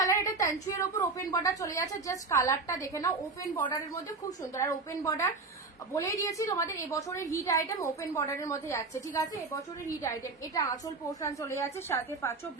এটা তানচুয়ের ওপর ওপেন বর্ডার চলে যাচ্ছে। জাস্ট কালারটা দেখে নাও, ওপেন বর্ডারের মধ্যে খুব সুন্দর। আর ওপেন বর্ডার বলেই দিয়েছি তোমাদের এবছরের হিট আইটেম ওপেন বর্ডারের মধ্যে যাচ্ছে, ঠিক আছে? এবছরের হিট আইটেম এটা। আঁচল পোর্শন চলে যাচ্ছে, সাথে পাচ্ছ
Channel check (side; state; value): left; quieter; 3.9 dB